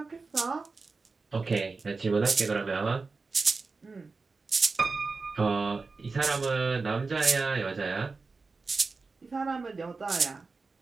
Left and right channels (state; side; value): quieter; left; 4.1 dB